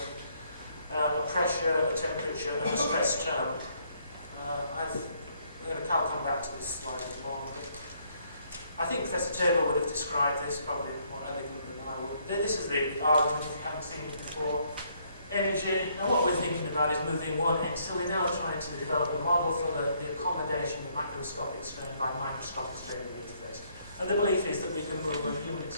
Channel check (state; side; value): inverted; both; correlation -0.69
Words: a pressure, a temperature, and a stress term. I'll come back to this slide in a moment. I think Professor Tabor would have described this probably more elegantly than I would. This is the argument, if you haven't seen it before. Energy. Now what we're thinking about is moving one end. So we're now trying to develop a model for the accommodation of macroscopic strain by microscopic strain in the interface. And the belief is that we can move a unit